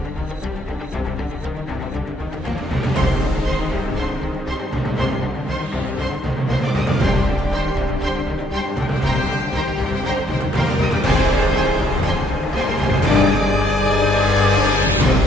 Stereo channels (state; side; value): normal; both; correlation 0.69